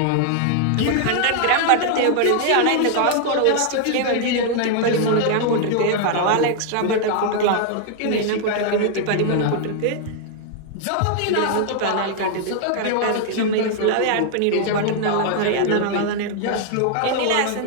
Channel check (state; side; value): different; both; correlation 0.00